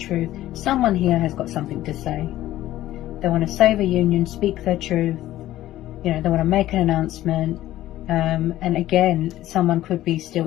Someone here has got something to say. They want to save a union, speak their truth, you know, they want to make an announcement. And again, someone could be still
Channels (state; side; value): quieter; right; 14.4 dB